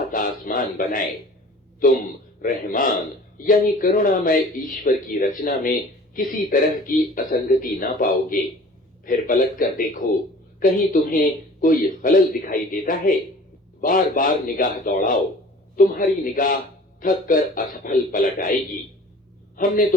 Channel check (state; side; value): normal; both; correlation 0.46